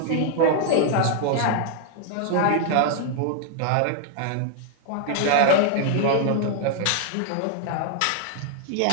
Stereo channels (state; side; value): different; both; correlation 0.00